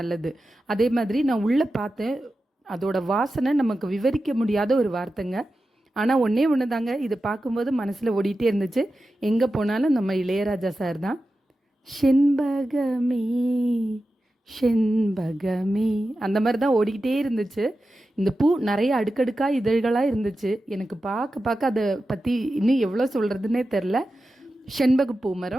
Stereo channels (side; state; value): both; normal; correlation 0.92